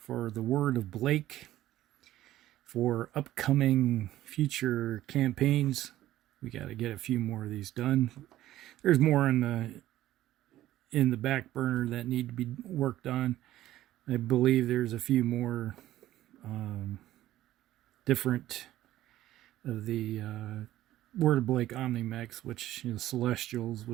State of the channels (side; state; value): left; quieter; 14.2 dB